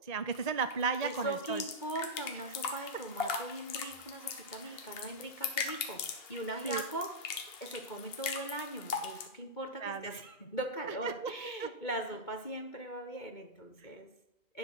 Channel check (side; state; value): right; late; 2.7 ms